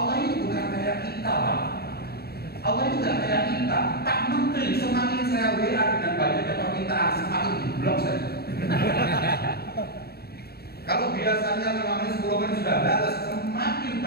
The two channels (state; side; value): late; right; 0.46 ms